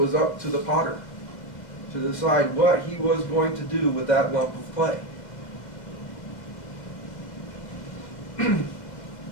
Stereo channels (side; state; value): right; late; 2.1 ms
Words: up to the potter to decide what he was going to do with that lump of clay.